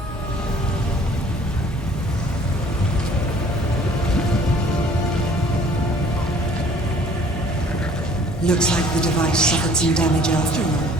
Looks like the device suffered some damage after all.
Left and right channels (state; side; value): normal; both; correlation 0.54